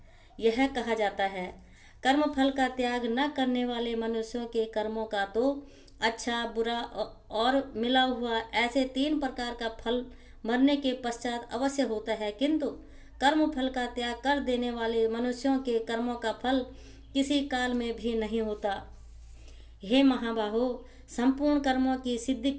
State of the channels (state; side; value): identical; both; correlation 1.00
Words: यह कहा जाता है, कर्म फल का त्याग न करने वाले मनुष्यों के कर्मों का तो अच्छा, बुरा और मिला हुआ ऐसे 3 प्रकार का फल मरने के पश्चात अवश्य होता है, किंतु कर्म फल का त्याग कर देने वाले मनुष्यों के कर्मों का फल किसी काल में भी नहीं होता। हे महाबाहो, संपूर्ण कर्मों की सिद्धि